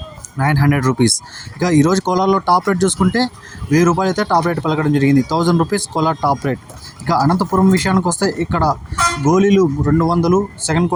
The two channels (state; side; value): identical; both; correlation 1.00